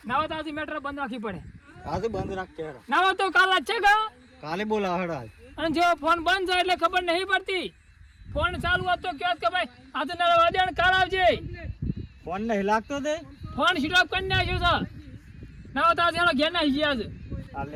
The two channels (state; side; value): identical; both; correlation 1.00